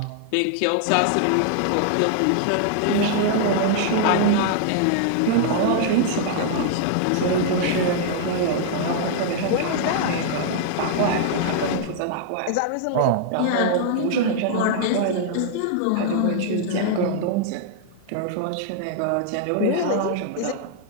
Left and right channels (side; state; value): both; different; correlation -0.01